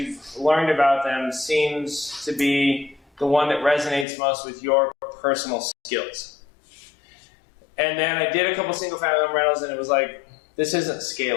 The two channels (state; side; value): drops out; right; at 4.0 s